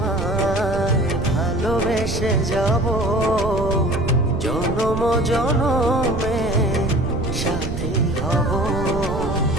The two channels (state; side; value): noise; right; rumble, 6 dB below the sound